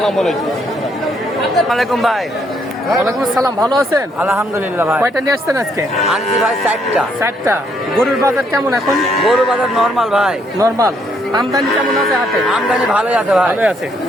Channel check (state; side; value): normal; both; correlation 0.71